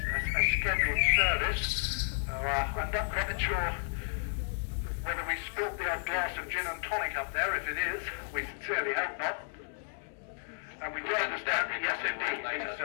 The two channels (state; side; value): silent; right; digital silence